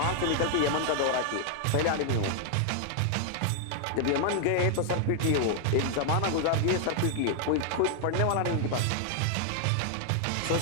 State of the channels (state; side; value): different; both; correlation 0.00